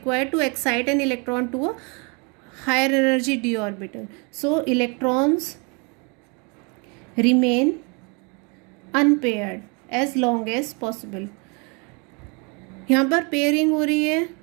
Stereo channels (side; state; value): left; quieter; 32.7 dB